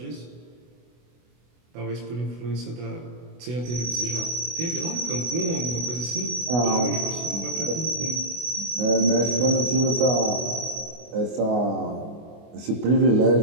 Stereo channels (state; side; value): late; left; 24 ms